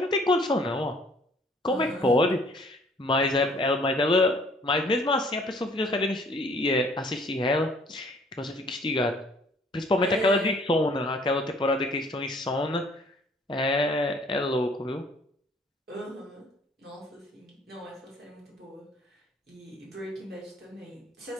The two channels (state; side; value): normal; both; correlation 0.58